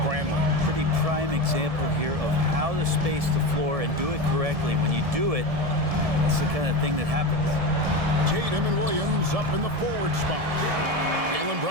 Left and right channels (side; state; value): left; late; 1.7 ms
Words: Pretty prime example here of how to space the floor and do it correctly. When you do it, that's the kind of thing that happens. Tatum and Williams up in the forward spot. Jaylen